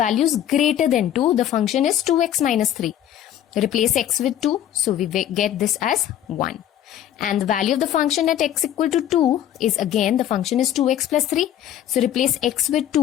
greater than 2, the function is 2x minus 3. Replace x with 2. So we get this as 1. And the value of the function at x equal to 2 is, again, the function is 2x plus 3. So replace x with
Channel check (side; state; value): right; quieter; 11.0 dB